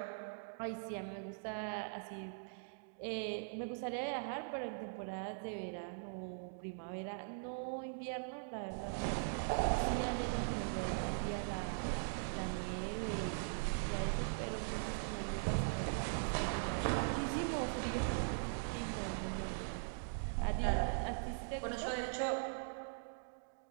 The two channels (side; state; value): left; silent; digital silence